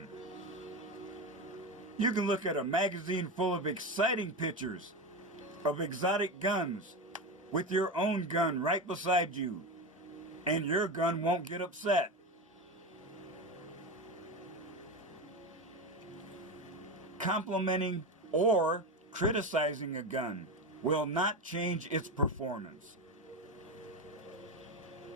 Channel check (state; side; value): normal; both; correlation 0.20